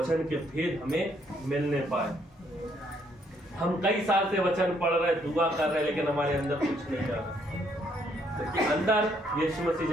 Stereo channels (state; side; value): normal; both; correlation 0.70